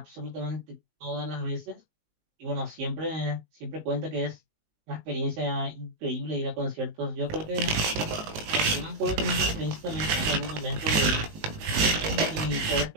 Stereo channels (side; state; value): left; late; 19 ms